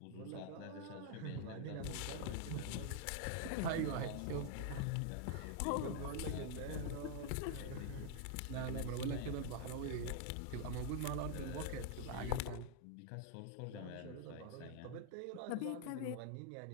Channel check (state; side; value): different; both; correlation 0.00